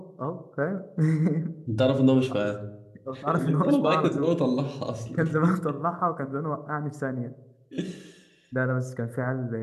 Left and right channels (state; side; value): identical; both; correlation 1.00